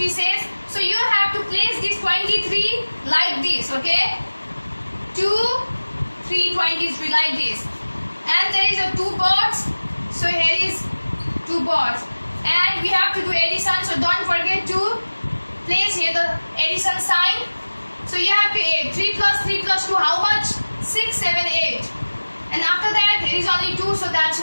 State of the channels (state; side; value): inverted; both; correlation -1.00